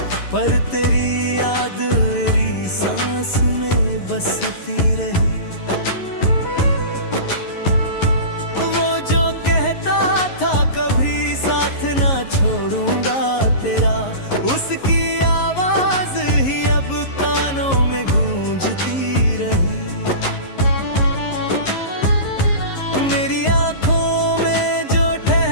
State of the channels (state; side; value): late; right; 11 ms